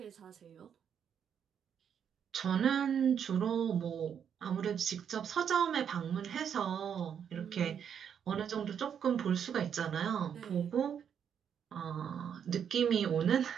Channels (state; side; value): quieter; left; 8.1 dB